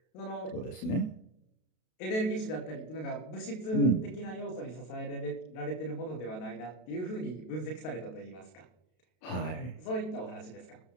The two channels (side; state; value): right; late; 32 ms